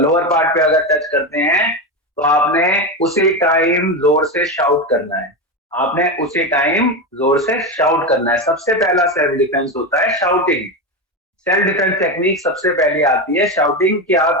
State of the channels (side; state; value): both; normal; correlation 0.16